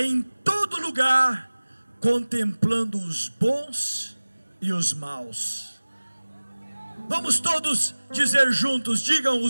todo lugar, contemplando os bons e os maus. Vamos todos dizer juntos, digam:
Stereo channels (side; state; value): both; inverted; correlation -1.00